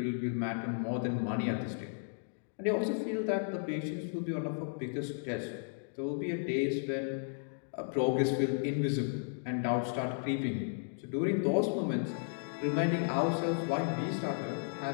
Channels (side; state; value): right; silent; digital silence